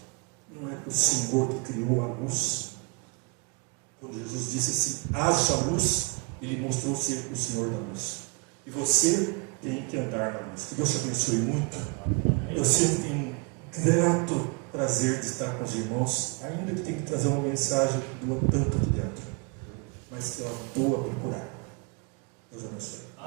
não é para o Senhor que criou a luz. Quando Jesus disse assim: haja luz, Ele mostrou ser o Senhor da luz. E você tem que andar na luz. Que Deus te abençoe muito. Eu sempre tenho grato prazer de estar com os irmãos, ainda que tenha que trazer uma mensagem que doa tanto aqui dentro, mas que ela doa para curar. Deus abençoe.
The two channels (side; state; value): left; quieter; 31.6 dB